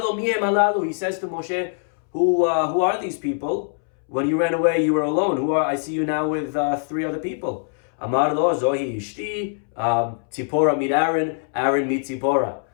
mihem alalu, he says to Moshe, who are these people? When you ran away, you were alone. I see you now with 3 other people. Amar lo zohi ishti, Tzipora meet Aaron meet Tzipora.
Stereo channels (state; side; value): silent; right; 64 dB below the other